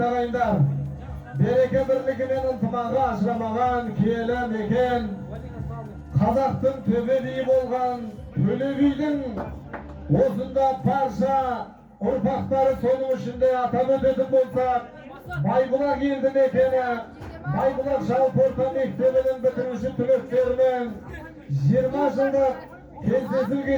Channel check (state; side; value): identical; both; correlation 1.00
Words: ağaylar. Bereke birligimen ıntımağı aşramagan kelem eken, Kazaktın töbeliği bolgan Tölebi'nin osunda parça urpakları sonumuşunda atam ödedim bolsa Baybulak geldi mekene, Baybulak Şalporta Mektebi'nin bitirmişi tülöklerinin 20 yıllık kensesil